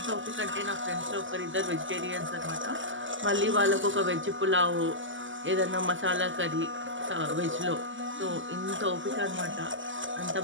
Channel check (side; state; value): left; late; 0.56 ms